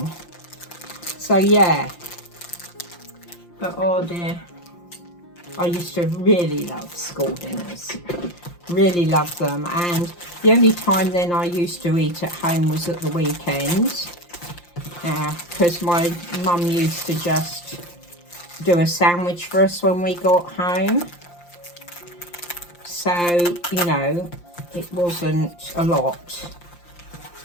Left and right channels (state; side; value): late; right; 5.7 ms